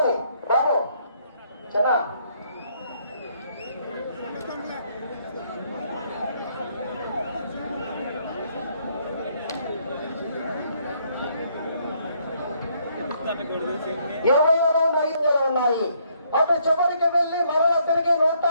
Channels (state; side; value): inverted; both; correlation -0.70